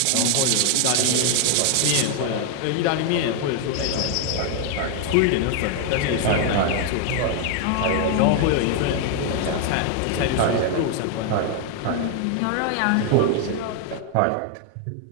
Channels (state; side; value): different; both; correlation 0.00